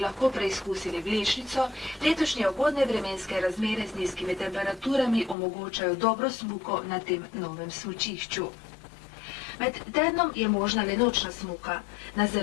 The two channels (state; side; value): drops out; right; at 5.4 s